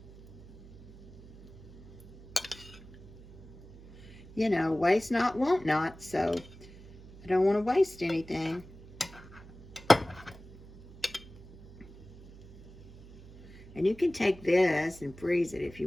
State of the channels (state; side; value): noise; right; hum, 18 dB below the sound